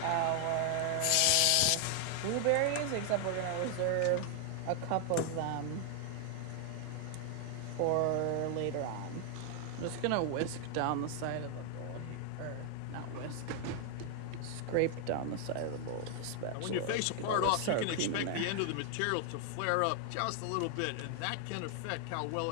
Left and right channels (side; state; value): both; different; correlation 0.00